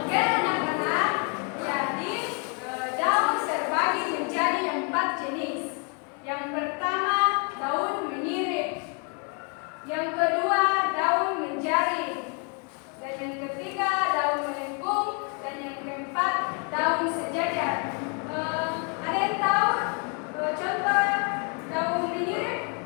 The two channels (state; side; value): quieter; right; 36.0 dB